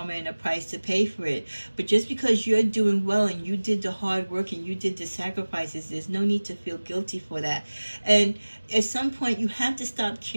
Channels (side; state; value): both; inverted; correlation -1.00